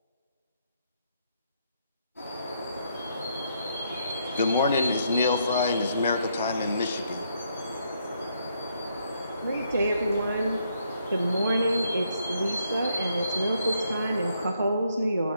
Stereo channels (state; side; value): inverted; both; correlation -0.73